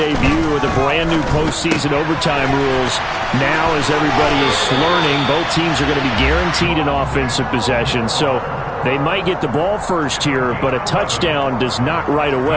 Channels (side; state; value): both; identical; correlation 1.00